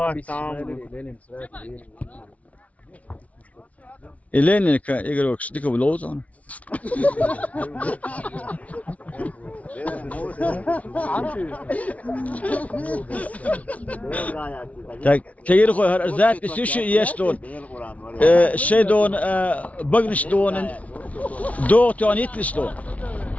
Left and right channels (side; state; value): right; late; 0.067 ms